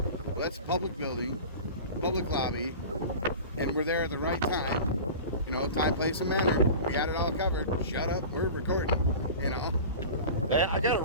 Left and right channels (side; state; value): both; inverted; correlation -0.34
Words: Well, that's a public building, public lobby, and we're there at the right time. Time, place, and manner. We got it all covered. Shut up, we're recording. I got